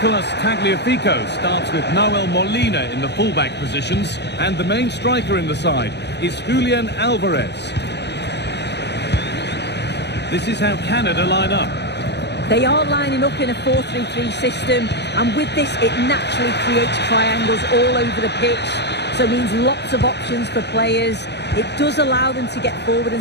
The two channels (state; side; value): late; right; 0.50 ms